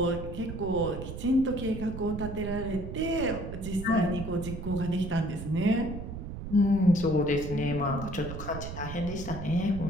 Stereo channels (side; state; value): right; noise; rumble, 8 dB below the sound